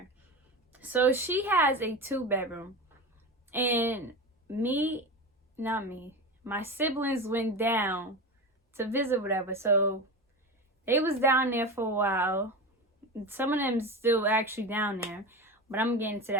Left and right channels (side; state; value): both; normal; correlation 0.25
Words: So she has a 2-bedroom. And my siblings went down to visit, whatever. So they was down there for a while. Some of them still actually down there, but I'm getting to